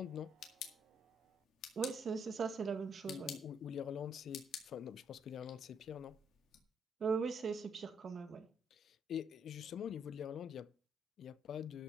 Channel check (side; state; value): both; normal; correlation 0.71